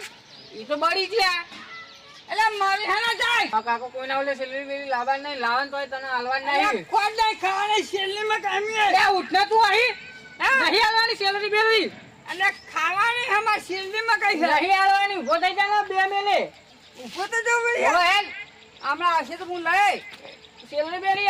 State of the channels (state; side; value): identical; both; correlation 1.00